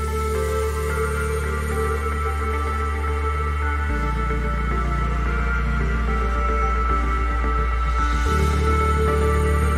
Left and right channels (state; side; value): identical; both; correlation 1.00